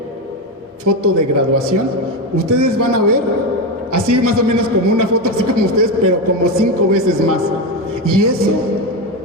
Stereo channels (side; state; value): both; normal; correlation 0.13